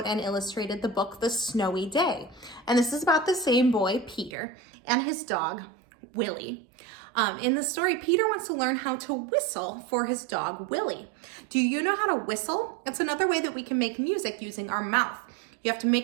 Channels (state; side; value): drops out; left; at 4.3 s